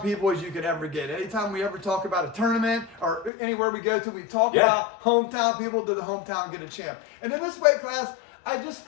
people as you could ever get. Anytime we ever talk about a tournament or anywhere we go to, we talk about hometown people. Do the hometown get a champ? And in this weight class, I just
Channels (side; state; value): right; drops out; at 3.3 s